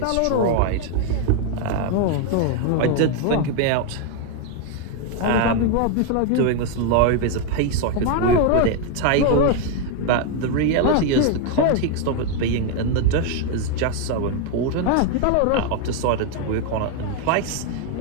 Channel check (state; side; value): different; both; correlation 0.01